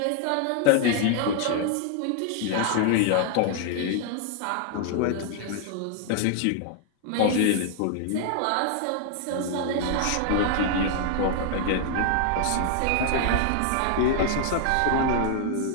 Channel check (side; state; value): both; different; correlation 0.00